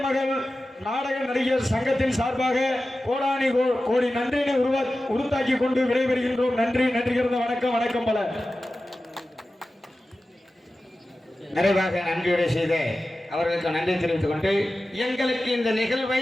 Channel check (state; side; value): normal; both; correlation 0.95